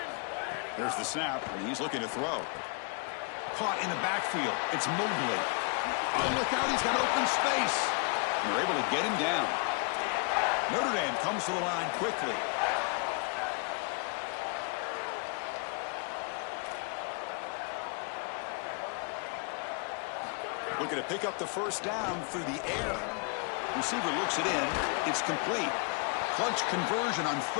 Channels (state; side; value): quieter; right; 35.9 dB